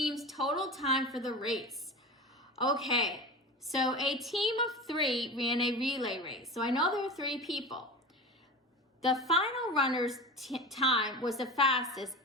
total time for the race? Okay, so a team of 3 ran a relay race. So I know there are 3 people. The final runner's time was the fastest,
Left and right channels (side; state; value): both; normal; correlation 0.30